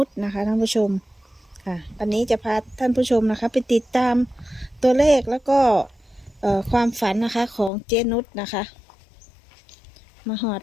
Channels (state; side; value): drops out; right; at 7.7 s